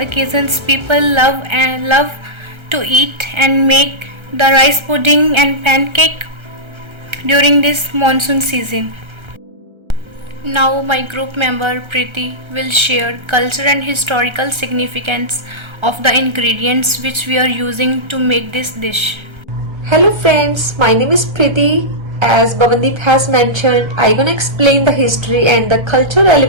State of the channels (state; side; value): late; left; 1.3 ms